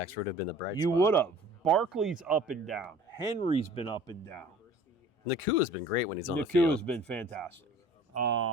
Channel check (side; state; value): both; normal; correlation 0.46